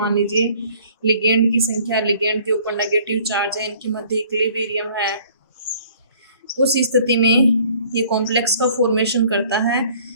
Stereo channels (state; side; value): inverted; both; correlation -0.55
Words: लीजिए। लिगेंड की संख्या, लिगेंड के ऊपर नेगेटिव चार्ज है, इनके मध्य इक्विलिब्रियम है। उस स्थिति में ये कॉम्प्लेक्स का फॉर्मेशन करता है।